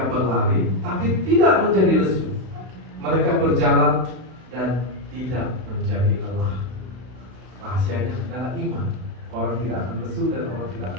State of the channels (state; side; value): late; left; 32 ms